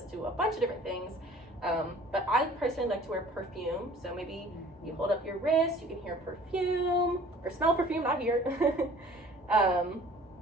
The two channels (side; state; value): both; normal; correlation 0.50